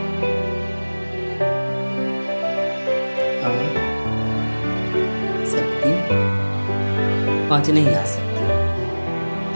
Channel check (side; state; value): both; inverted; correlation -1.00